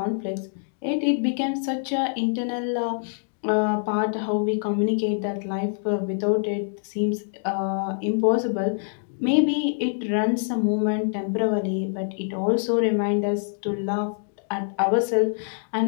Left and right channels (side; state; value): right; silent; digital silence